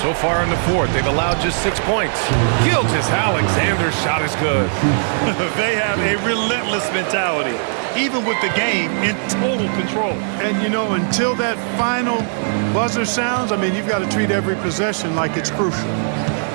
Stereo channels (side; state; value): left; silent; digital silence